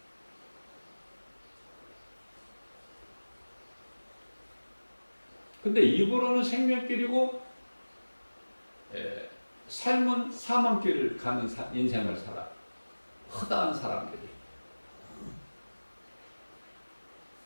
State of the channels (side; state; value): both; inverted; correlation -1.00